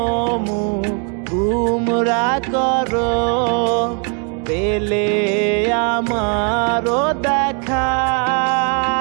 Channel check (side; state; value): left; quieter; 39.6 dB